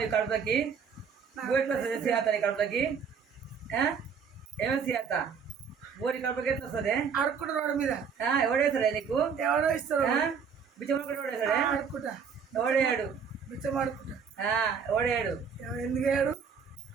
నీ కడుపులకి? బువ్వ ఎట్లా వస్తుంది సుజాత నీ కడుపులకి? ఏమో సుజాత బువ్వ నీ కడుపులకి ఎట్లా వస్తుంది? అడుక్కుంటారు రోడ్డు మీద. ఎవడేస్తాడే నీకు? ఎవడో ఇస్తారు బిచ్చమడుకుంటే ఎవడేస్తాడే? అడుక్కుంటా. ఎవడేయాడు? బిచ్చం అడుక్కుంటా. ఎవడేయాడు? ఎందుకు వేయడు?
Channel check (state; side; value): quieter; left; 6.5 dB